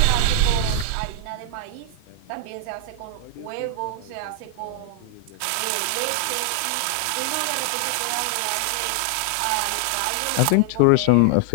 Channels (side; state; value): both; different; correlation 0.00